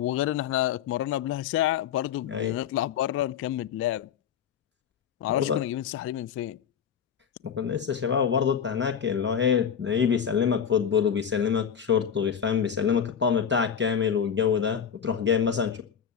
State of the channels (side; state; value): right; quieter; 7.9 dB